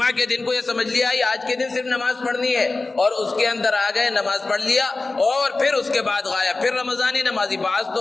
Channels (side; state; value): right; quieter; 3.5 dB